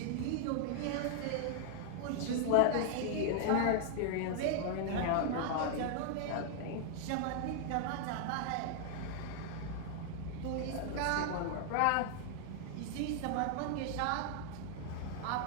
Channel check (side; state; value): both; different; correlation 0.00